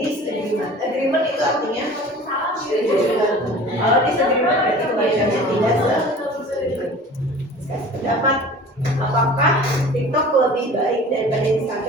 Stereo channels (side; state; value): both; normal; correlation 0.42